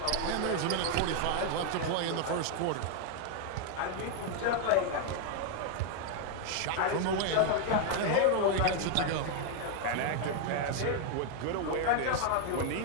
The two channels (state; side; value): different; both; correlation 0.00